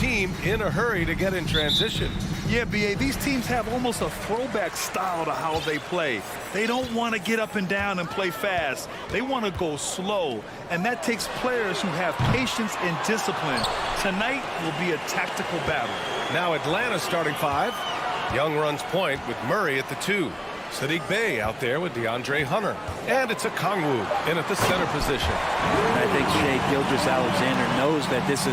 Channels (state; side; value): identical; both; correlation 1.00